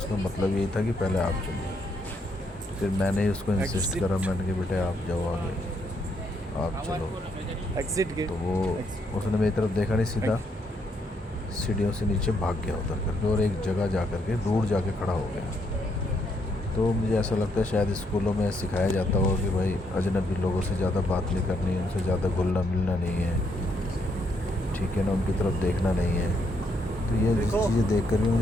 मतलब यही था कि पहले आप चलो। फिर मैंने ही उसको इंसिस्ट Exit. करा, मैंने कि बेटे आप जाओ आगे, आप चलो। Exit gate. तो वो उसने मेरी तरफ देखा नहीं, सीधा सीढ़ियों से नीचे भाग गया उतर करके, और एक जगह जा करके दूर जाके खड़ा हो गया। तो मुझे ऐसा लगता है शायद स्कूलों में सिखाया जाता होगा कि भाई अजनबी लोगों से ज़्यादा बात नहीं करनी है, उनसे ज़्यादा घुलना मिलना नहीं है, ठीक है ना, उनकी तरफ देखना नहीं है। तो ये देखो। चीज़ें देख कर भी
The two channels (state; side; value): normal; both; correlation 0.75